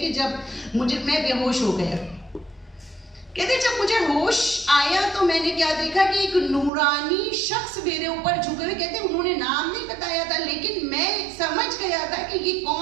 جب میں بے ہوش ہو گیا، کہتے جب مجھے ہوش آیا تو میں نے کیا دیکھا کہ ایک نورانی شخص میرے اوپر جھکے ہوئے. کہتے انہوں نے نام نہیں بتایا تھا لیکن میں سمجھ گیا تھا کہ یہ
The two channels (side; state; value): left; drops out; at 6.7 s